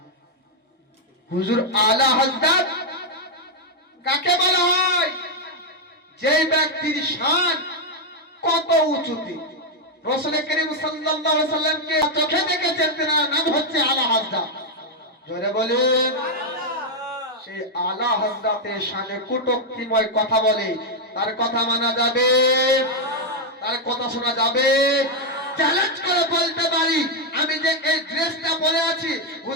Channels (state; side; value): normal; both; correlation 0.00